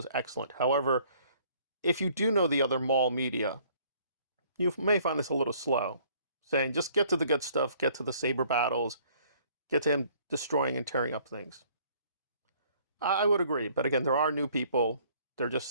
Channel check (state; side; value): inverted; both; correlation -0.59